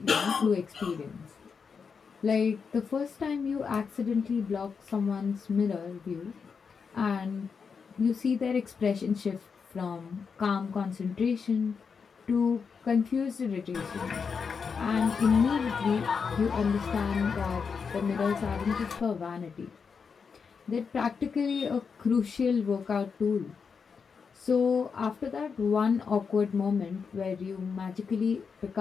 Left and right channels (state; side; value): quieter; right; 5.8 dB